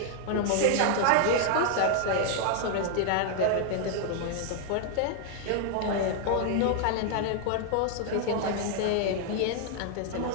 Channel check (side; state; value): both; different; correlation 0.00